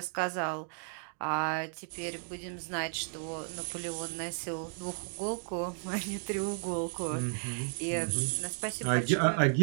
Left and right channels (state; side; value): silent; left; 55 dB below the other